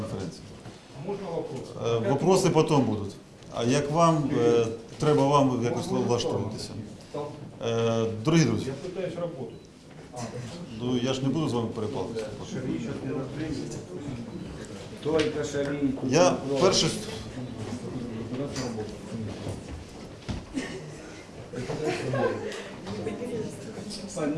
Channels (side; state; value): both; identical; correlation 1.00